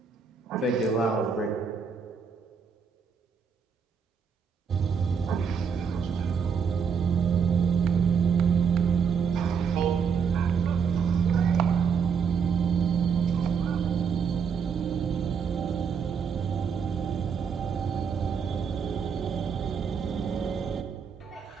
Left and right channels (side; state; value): left; quieter; 6.4 dB